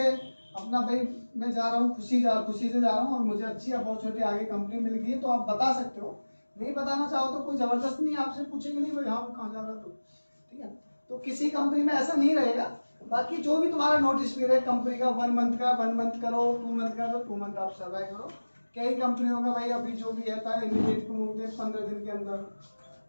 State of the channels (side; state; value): both; inverted; correlation -1.00